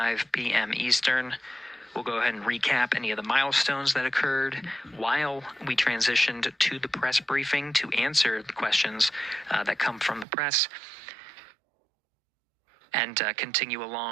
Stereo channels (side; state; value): left; drops out; at 10.2 s